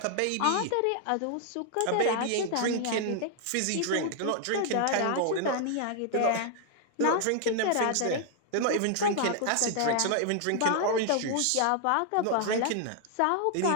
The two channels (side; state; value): both; different; correlation 0.00